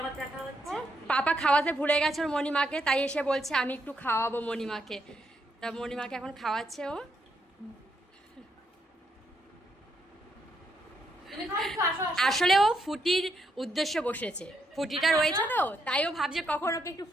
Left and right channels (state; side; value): normal; both; correlation 0.77